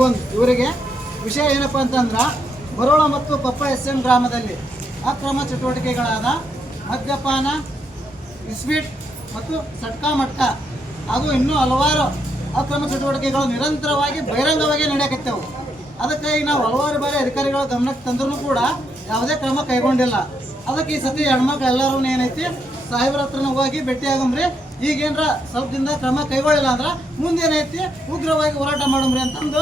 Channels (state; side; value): normal; both; correlation 0.78